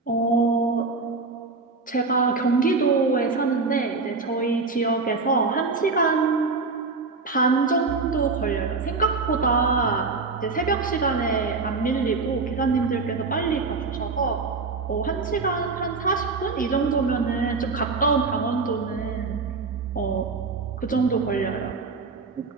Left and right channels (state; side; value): quieter; left; 4.1 dB